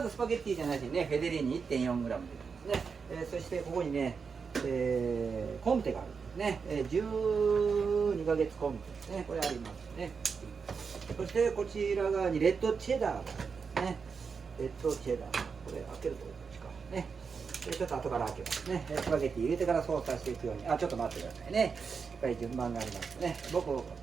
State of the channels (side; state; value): left; quieter; 5.6 dB